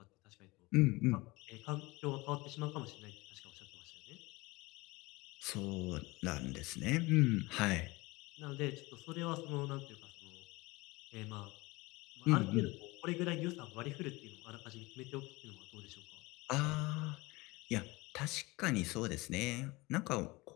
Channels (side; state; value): right; quieter; 22.7 dB